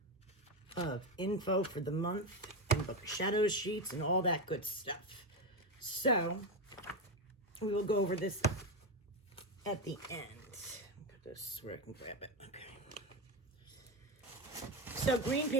info for the month and book shadow sheets and all that good stuff. So we will go over this at the end. Put this where I can grab it. Okay. So green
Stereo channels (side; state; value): both; normal; correlation 0.13